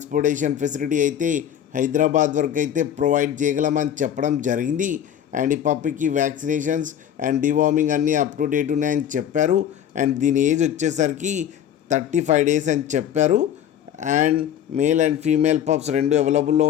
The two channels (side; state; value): right; quieter; 9.9 dB